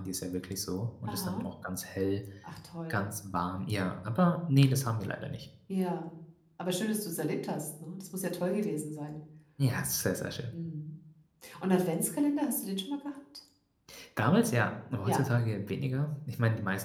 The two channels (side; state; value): both; identical; correlation 1.00